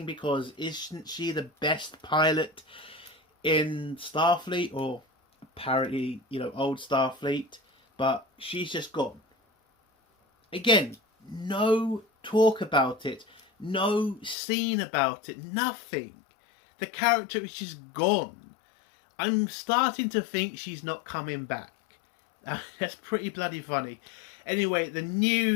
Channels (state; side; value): drops out; right; at 14.4 s